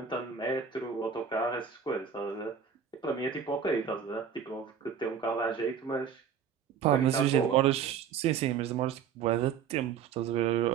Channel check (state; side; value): quieter; left; 7.3 dB